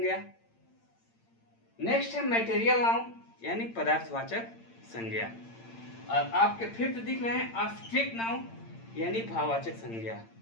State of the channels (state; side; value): late; right; 8.8 ms